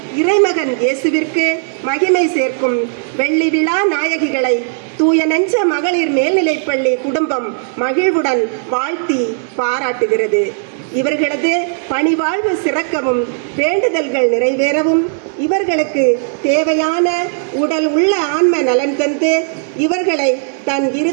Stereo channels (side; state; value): left; silent; digital silence